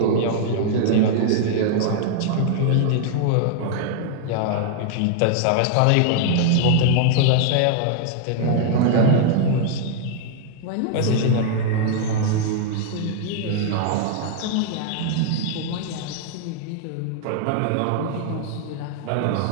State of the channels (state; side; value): different; both; correlation -0.01